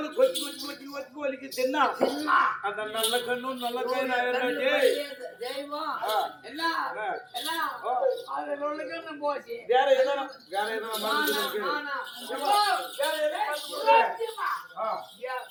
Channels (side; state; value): both; identical; correlation 1.00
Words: கொச்சி கொச்சி கொச்சி கொச்சி கோழிக்கு தின்னா அந்த நல்ல கண்ணும் நல்ல கை தெய்வம் என்ன என்ன போச்சு வேற எதனா